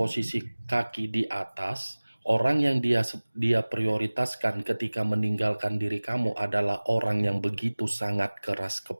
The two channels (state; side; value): inverted; both; correlation -1.00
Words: kaki di atas, orang yang dia prioritaskan ketika meninggalkan diri kamu adalah orang yang begitu sangat keras